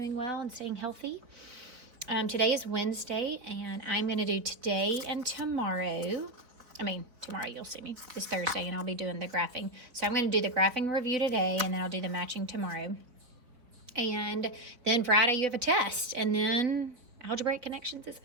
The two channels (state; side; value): late; left; 4.2 ms